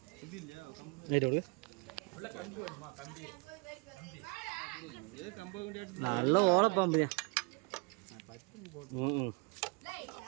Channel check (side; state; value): left; quieter; 30.6 dB